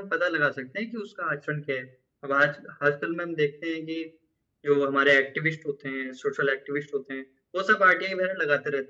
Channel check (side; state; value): both; identical; correlation 1.00